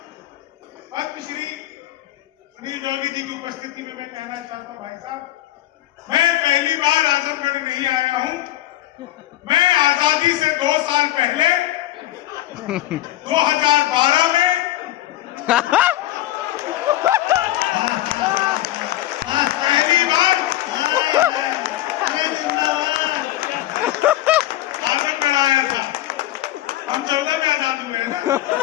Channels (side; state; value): right; quieter; 15.0 dB